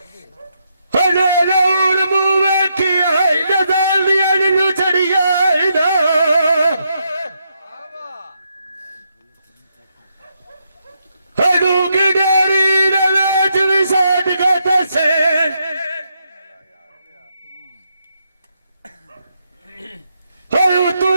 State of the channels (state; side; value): inverted; both; correlation -0.79